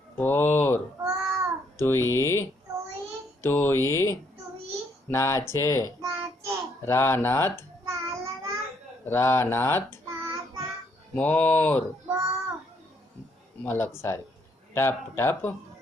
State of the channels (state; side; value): normal; both; correlation 0.70